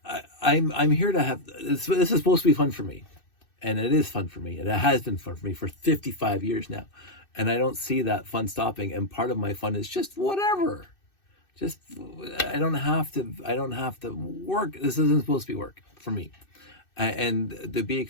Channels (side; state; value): right; late; 2.6 ms